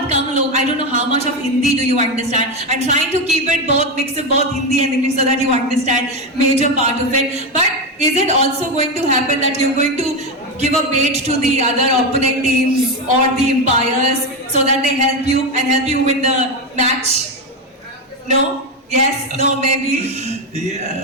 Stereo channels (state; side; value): normal; both; correlation 0.12